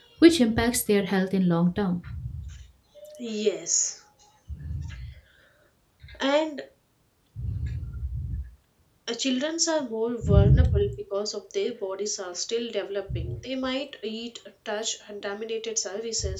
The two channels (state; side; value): identical; both; correlation 1.00